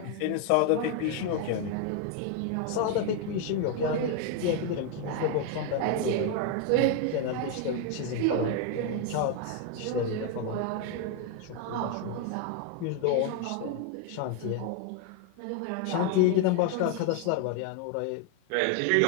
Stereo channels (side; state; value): both; different; correlation 0.01